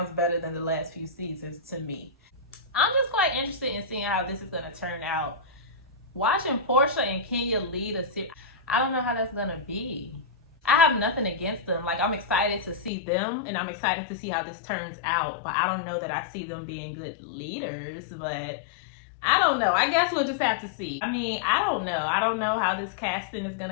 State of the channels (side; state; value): right; drops out; at 12.9 s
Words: better than the last few seasons to me. I'm just quite interested in seeing how this is going to turn out. Watching Porsha and Kenya lead a series, I don't know how that's going to be. I have nothing against them. Like, I'm excited to see them, and I'm excited to see how this turns out. But I don't know that I see them being good leaders, but I don't know. I guess we'll just have to see. I mean, I don't know. I don't know how this casting is going